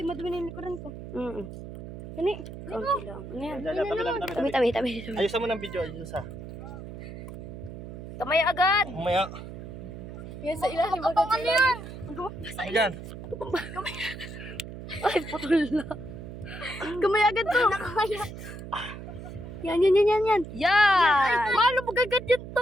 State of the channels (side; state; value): right; noise; hum, 11 dB below the sound